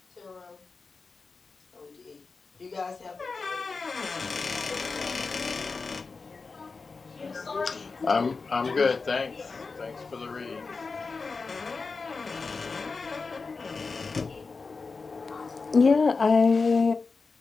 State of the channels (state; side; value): quieter; right; 4.4 dB